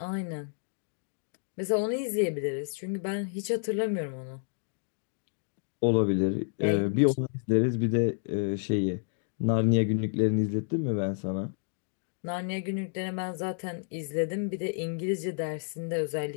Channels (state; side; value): silent; right; 58 dB below the other